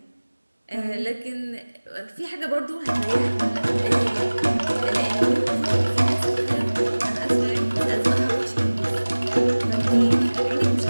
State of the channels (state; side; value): inverted; both; correlation -1.00